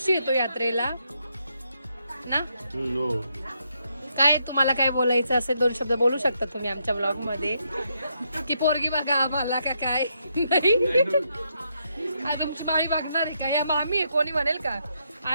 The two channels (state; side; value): inverted; both; correlation -0.78